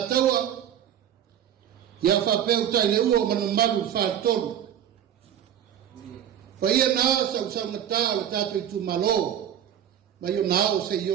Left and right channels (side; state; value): left; quieter; 9.9 dB